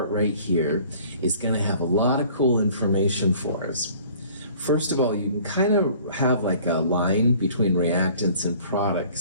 right here is gonna have a lot of cool information for us. First of all, you can kind of have like a line between reactants and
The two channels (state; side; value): inverted; both; correlation -0.52